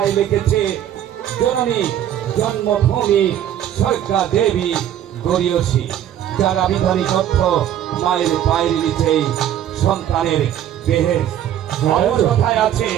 লিখেছে, জননী জন্মভূমি সরকা দেবী গরিয়সী, যার আবিধানিক অর্থ মায়ের পায়ের নিচেই সন্তানের বেহেশ। কথায় আছে,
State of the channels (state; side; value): quieter; left; 10.9 dB